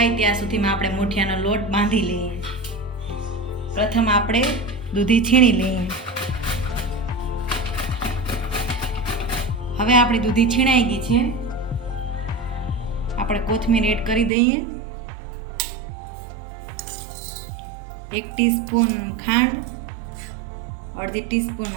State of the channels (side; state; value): left; drops out; at 14.3 s